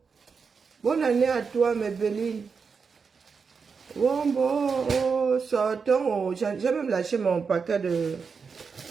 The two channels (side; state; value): left; quieter; 5.5 dB